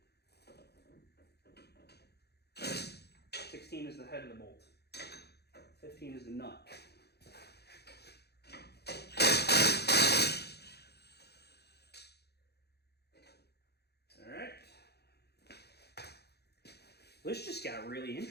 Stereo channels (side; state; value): right; late; 0.48 ms